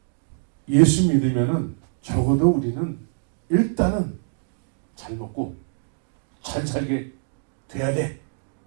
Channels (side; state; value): left; silent; digital silence